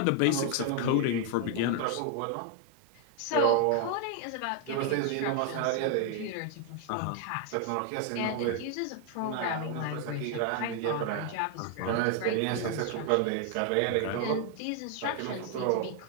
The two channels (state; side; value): different; both; correlation 0.01